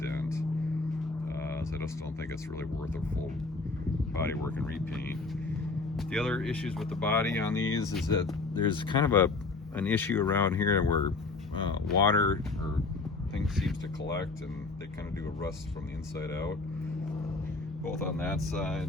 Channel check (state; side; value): quieter; right; 3.8 dB